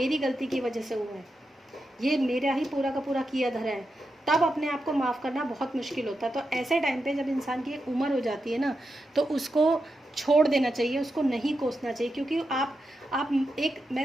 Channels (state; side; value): normal; both; correlation 0.87